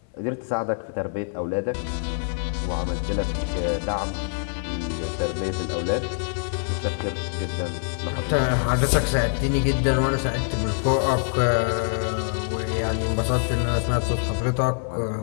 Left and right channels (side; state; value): right; silent; 62 dB below the other